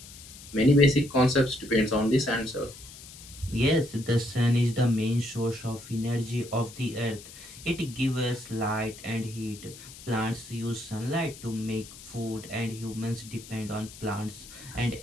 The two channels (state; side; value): noise; left; hiss, 17 dB below the sound